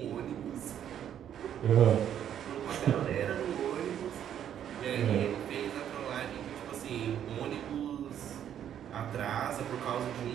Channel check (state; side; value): quieter; left; 9.8 dB